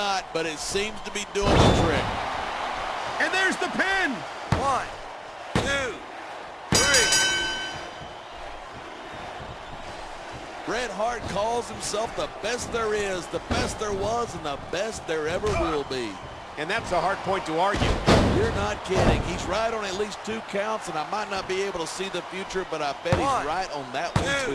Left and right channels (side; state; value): both; identical; correlation 1.00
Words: but it seems to be doing the trick. And there's the pin. 1, 2, 3. Bret Hart calls himself the best there is, the best there was, and the best there ever will be. And that's a hard point to argue. You're not kidding. He's right on at least 2 counts, and I might not be able to see the future, but I bet he's right on that one,